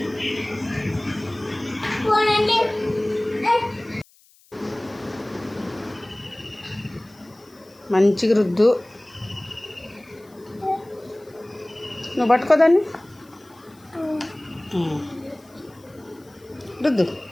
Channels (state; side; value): noise; left; hiss, 29 dB below the sound